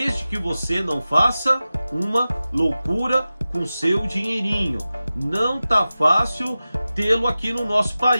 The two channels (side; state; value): both; inverted; correlation -0.95